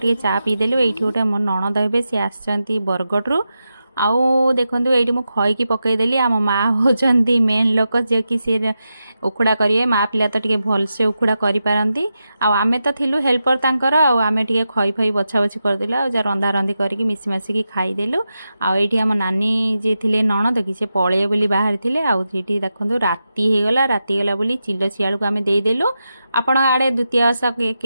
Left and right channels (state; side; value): inverted; both; correlation -0.89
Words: चा पीदेलु ये गोटे मो नणद हे सी आसछंती बरगढ़ आउ देखु ये मुझे खईकी पकईदेली आम माँ होती मेन लोक जे कि सी उखुड़ा करेंगे माँ पिला तो टे भलसे उखुड़ा करपारती आमे तो थिलु हेल्पर तांकर आमे टे खई फई बछा बछी करदेलु आ रंधा रंधी करके मिसी मासिकी खाईदेलु आम नानी जी थे नणद कि से पळे बोली बाहर थे आठी देखो राति होगला राति गला बोली चिलो शियाल को आम देदेलु आपण आड़े द्वितीय ओषा